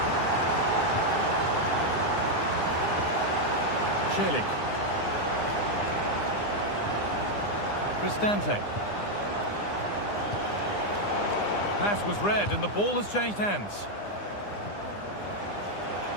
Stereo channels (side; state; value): right; late; 9.8 ms